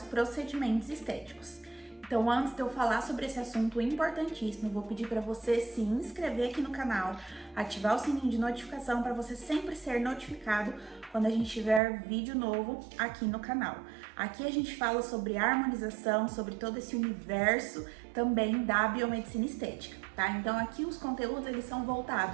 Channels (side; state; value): left; drops out; at 11.8 s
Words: procedimentos estéticos. Então, antes de eu falar sobre esse assunto importantíssimo, eu vou pedir para você se inscrever aqui no canal, ativar o sininho de notificação para você sempre ser notificado quando a gente tiver vídeo novo aqui no canal. Aqui a gente fala sobre harmonização, sobre todo esse universo também da biomedicina estética, tá? Então aqui os conteúdos eles são